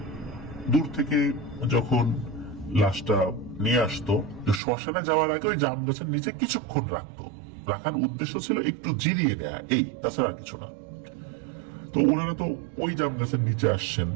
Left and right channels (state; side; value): drops out; left; at 4.6 s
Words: দূর থেকে যখন লাশটা নিয়ে আসতো, শ্মশানে যাওয়ার আগে ওই জাম গাছের নিচে কিছুক্ষণ রাখার উদ্দেশ্য ছিল একটু জিরিয়ে নেয়া, এই, তাছাড়া আর কিছু না। তো ওনারা তো ওই জাম গাছের নিচে আসছেন।